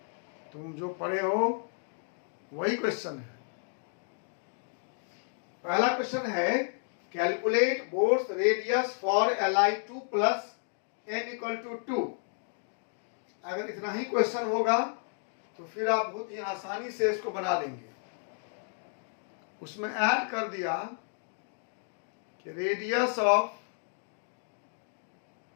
तुम जो पढ़े हो वही क्वेश्चन है। पहला क्वेश्चन है calculate boards radius for Li2 plus n = 2। अगर इतना ही क्वेश्चन होगा तो फिर आप बहुत ही आसानी से इसको बना लेंगे। उसमें ऐड कर दिया कि radius of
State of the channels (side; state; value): right; silent; 56 dB below the other